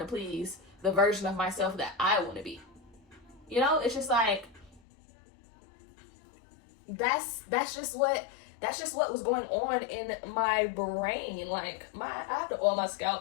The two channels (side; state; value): right; drops out; at 4.8 s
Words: please the version of myself that I want to be? You know, it's just like, that's just what was going on in my brain. Like, I have to oil my